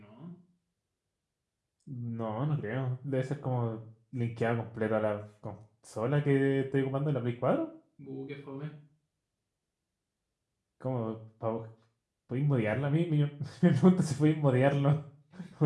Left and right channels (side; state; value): both; identical; correlation 1.00